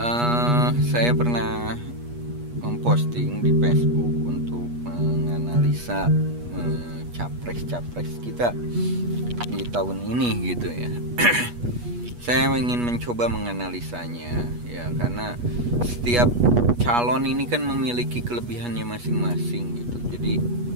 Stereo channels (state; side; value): late; left; 8.3 ms